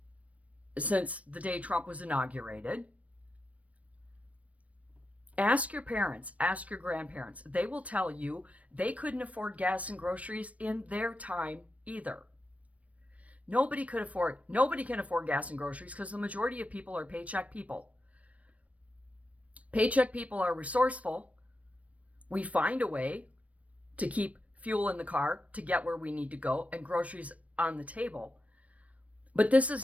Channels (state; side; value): late; left; 0.066 ms